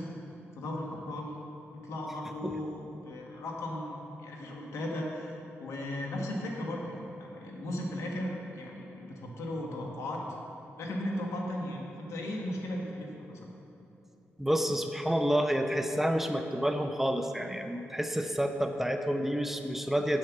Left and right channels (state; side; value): normal; both; correlation 0.90